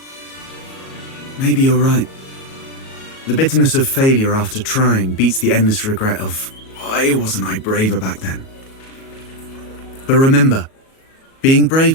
Maybe you're right. The bitterness of failure after trying beats the endless regret of, why wasn't I braver back then? But remember, being brave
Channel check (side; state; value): right; late; 37 ms